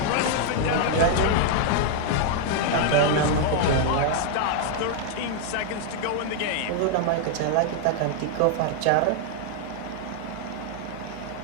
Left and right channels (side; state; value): both; different; correlation 0.00